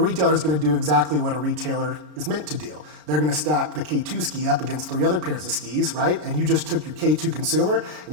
retailer is going to do exactly what a retailer is meant to do. They're going to stack the K2 ski up against 3 other pairs of skis, right? And you just took your K2 consumer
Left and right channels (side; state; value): left; late; 33 ms